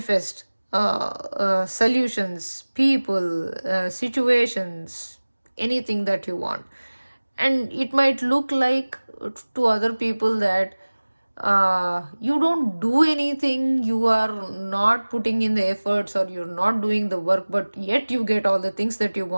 solutions, people, situations, anything that you want. And it might look like to other people that you don't do anything, you are not putting in the efforts, or you're not doing the work, but yet you get all the things that you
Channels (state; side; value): inverted; both; correlation -1.00